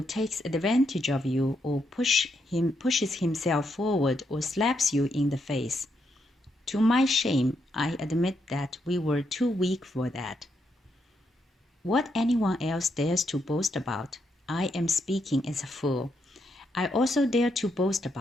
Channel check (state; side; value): normal; both; correlation 0.79